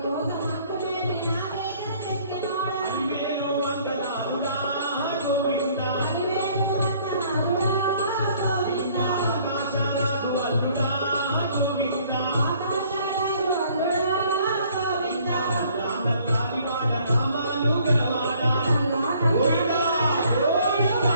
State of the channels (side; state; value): both; inverted; correlation -0.60